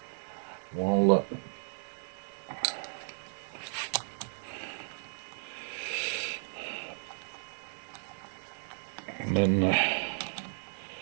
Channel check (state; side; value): silent; left; 55 dB below the other